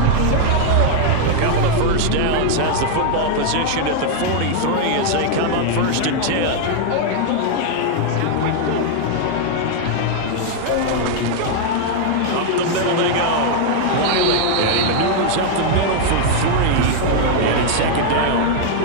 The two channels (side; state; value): both; different; correlation 0.00